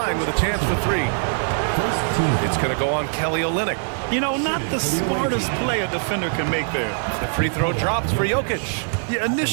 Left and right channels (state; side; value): silent; left; 64 dB below the other